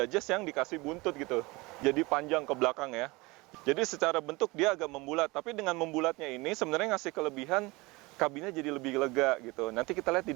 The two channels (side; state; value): left; quieter; 23.6 dB